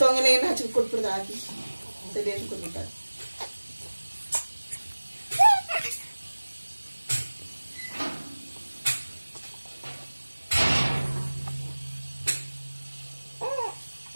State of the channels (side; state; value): both; inverted; correlation -1.00